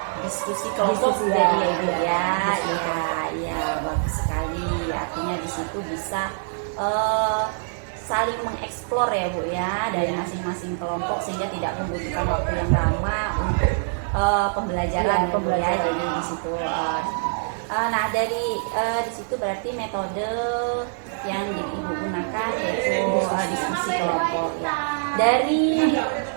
Diskusi kelompok Diskusi, jadi ya Ibu ya. ya, bagus sekali. Artinya di situ bisa saling mengeksplor ya Bu ya dari masing-masing kelompok sehingga tidak membutuhkan waktu yang lama untuk pembelajaran ya Bu ya. Jadi di situ nah dari di situ berarti metode yang Ibu gunakan yaitu diskusi kelompok ya. Dari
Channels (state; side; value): silent; left; 56 dB below the other